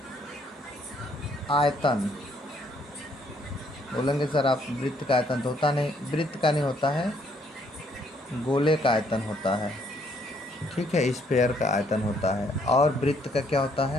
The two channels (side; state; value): both; normal; correlation 0.68